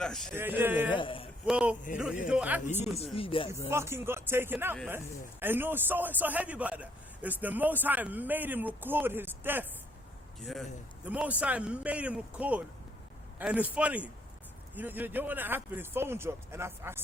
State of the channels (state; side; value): normal; both; correlation 0.68